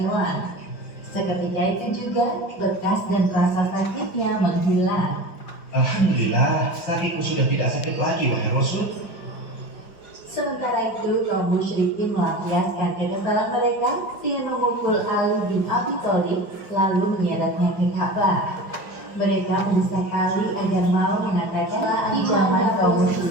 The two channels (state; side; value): late; right; 5.2 ms